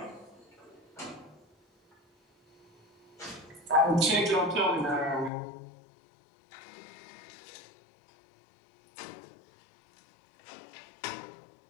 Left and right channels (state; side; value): drops out; right; at 5.3 s